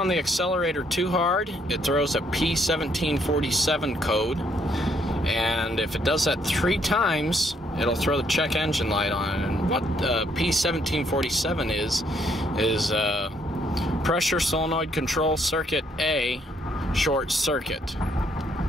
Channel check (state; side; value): normal; both; correlation 0.70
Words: the accelerator too hard, it throws a P1747 code, and if it does that 3 times, it'll throw the check engine light on. And what P1747 is pressure solenoid control circuit A short circuit.